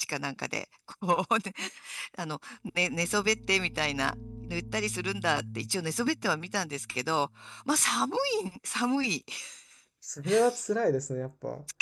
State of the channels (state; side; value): identical; both; correlation 1.00